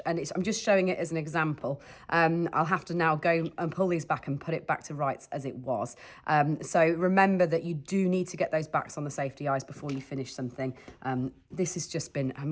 and I'm just showing it as an example. I'll have to now go and pull these back and put it back to rights as it was. So remember that you do need to get those backs on the safety eyes before you finish something. This has just been, I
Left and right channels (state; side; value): identical; both; correlation 1.00